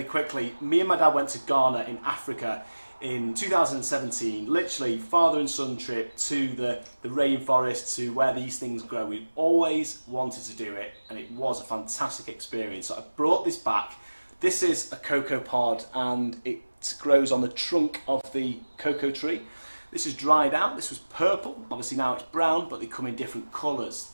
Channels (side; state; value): both; inverted; correlation -1.00